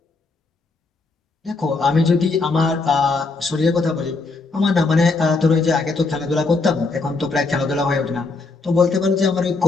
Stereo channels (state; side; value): quieter; right; 3.7 dB